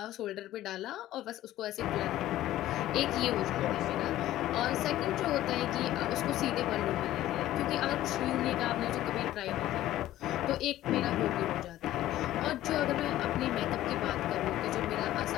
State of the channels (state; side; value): quieter; right; 14.3 dB